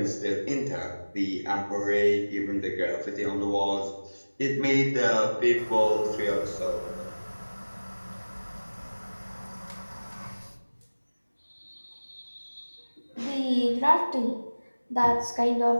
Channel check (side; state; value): both; inverted; correlation -1.00